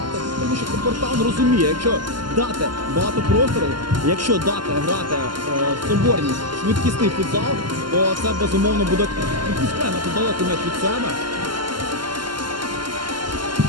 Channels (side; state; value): left; late; 0.71 ms